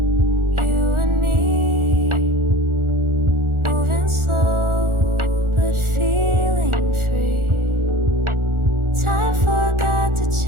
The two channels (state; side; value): late; left; 1.4 ms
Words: you and me, moving slow but feeling free. Time forgot to